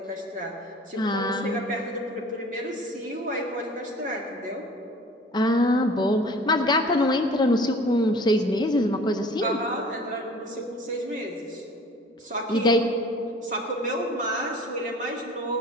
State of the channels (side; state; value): both; normal; correlation 0.46